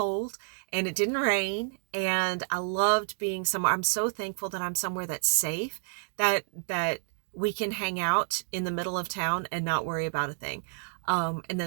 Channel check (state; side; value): silent; left; digital silence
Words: and it didn't rain, and I loved being somewhere. I'm so thankful that I'm somewhere that's safe, that we can hang out in the middle of town and not worry about a thing. And